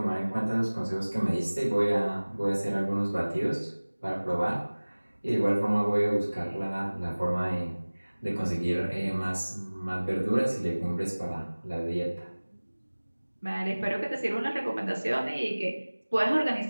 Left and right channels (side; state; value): both; inverted; correlation -1.00